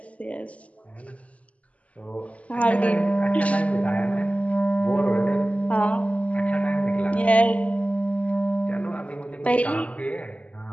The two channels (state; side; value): late; right; 0.067 ms